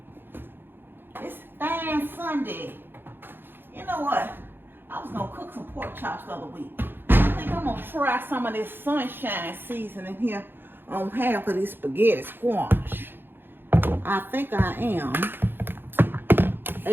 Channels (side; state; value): left; late; 0.10 ms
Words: This fine Sunday. You know what? I was going to cook some pork chops the other week. I think I'm going to try some of this sunshine seasoning here on half of this spaghetti squash. I think I am.